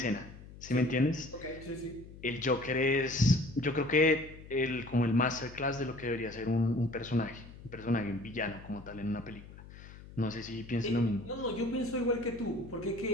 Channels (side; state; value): left; noise; hum, 17 dB below the sound